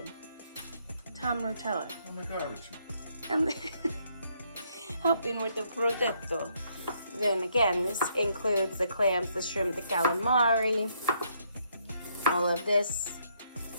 Tom Rotella. Oh my God, And helping with the Brodetto. Then again, this includes the clams, the shrimp, the calamari, all of this.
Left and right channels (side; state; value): both; inverted; correlation -0.72